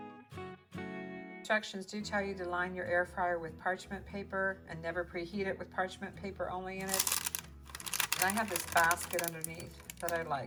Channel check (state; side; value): identical; both; correlation 1.00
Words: Instructions do tell you to line your air fryer with parchment paper and never preheat it with parchment paper only in it. And I have this basket underneath that I